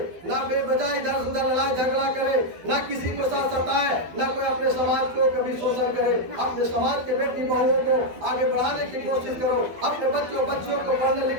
ना बेवजह इधर उधर लड़ाई झगड़ा करे, ना किसी को साथ सताए, ना कोई अपने समाज को कभी शोषण करे। अपने समाज के बेटी बहुओं को आगे बढ़ाने की कोशिश करो, अपने बच्चों को पढ़ने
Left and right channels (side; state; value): left; late; 12 ms